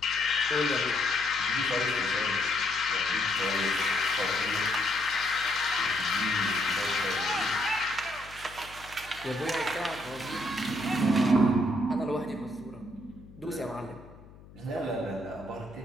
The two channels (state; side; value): noise; left; hum, 21 dB below the sound